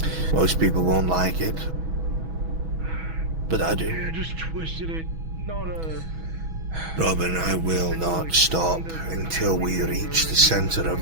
Most people won't like it, but I do. You just twisted it. Not a... Robin, I will not stop until we reach the center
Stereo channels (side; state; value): left; late; 6.2 ms